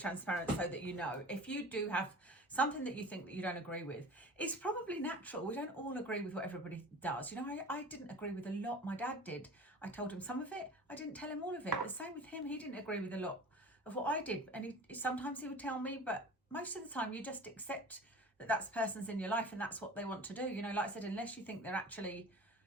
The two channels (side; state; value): both; normal; correlation 0.39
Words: so that you know, if you do have something that you think that you don't agree with, it's probably natural. We don't all agree with what everybody does. You know, I didn't agree with a lot. My dad did. I told him some of it. I didn't tell him all of it. The same with him. He didn't agree with a lot of what I did. And sometimes he would tell me, but most of the time you just accept that that's person's in your life and that's what they want to do. You know, like I said, unless you think they're actually